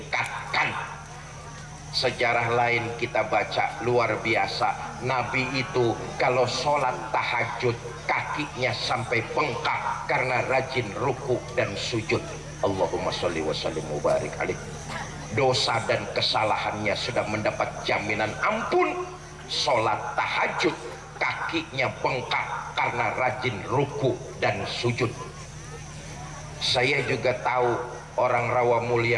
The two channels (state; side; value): identical; both; correlation 1.00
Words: Sejarah lain kita baca luar biasa. Nabi itu kalau sholat tahajud kakinya sampai bengkak karena rajin ruku dan sujud. Allahumma sholli wa sallim mubarik alaih. Dosa dan kesalahannya sudah mendapat jaminan ampun. Sholat tahajud kakinya bengkak karena rajin ruku dan sujud. Saya juga tahu orang rawa